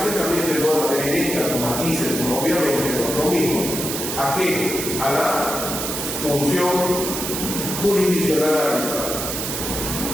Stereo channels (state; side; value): noise; right; hiss, 4 dB below the sound